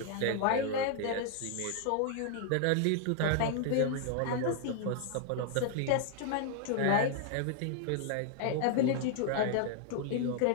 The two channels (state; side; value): different; both; correlation 0.00